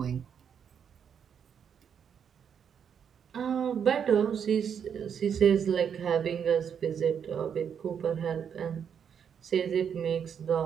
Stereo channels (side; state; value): left; quieter; 7.7 dB